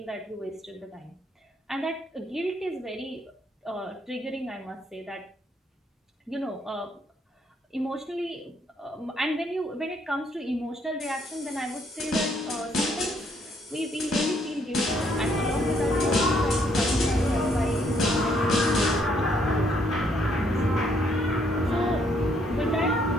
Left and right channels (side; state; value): both; normal; correlation 0.70